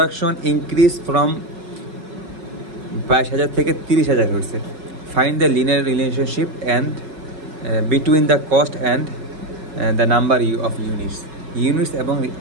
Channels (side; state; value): left; late; 5.4 ms